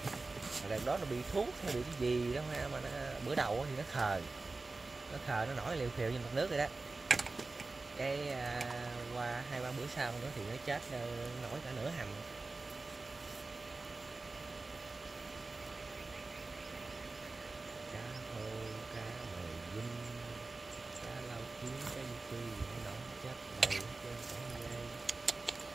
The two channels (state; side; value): quieter; left; 3.5 dB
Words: Lần đó nó bị thuốc hay bị cái gì đó mà nó, bữa đầu thì nó khờ nó nổi liều phiều trên mặt nước rồi đó. Cái qua 2-3 bữa sau nữa thì nó chết, nổi cả nửa hầm. Cá hô, cá mời dinh, cá lau kiếm, cá du phi nó nổi chết đầy hết trơn cả dây.